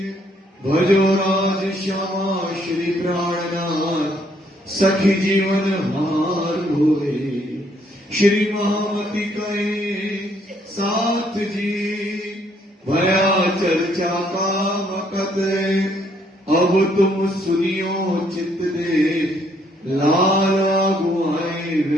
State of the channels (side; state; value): both; normal; correlation 0.68